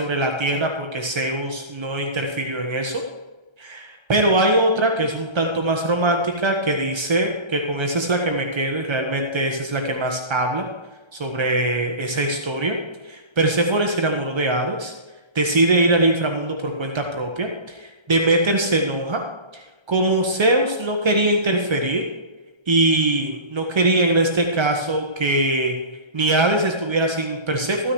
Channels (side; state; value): left; late; 1.3 ms